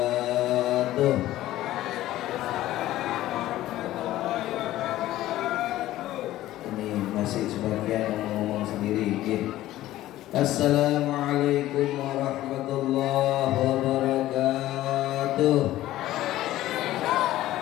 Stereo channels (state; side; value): quieter; right; 14.9 dB